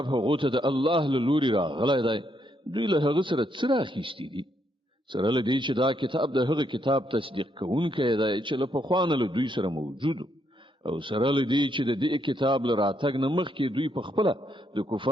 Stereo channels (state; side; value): normal; both; correlation 0.76